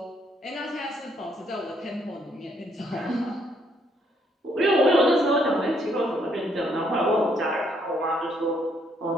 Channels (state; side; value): normal; both; correlation 0.70